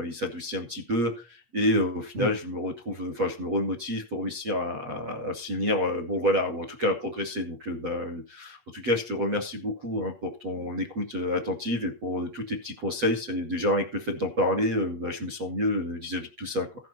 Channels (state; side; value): late; left; 8.4 ms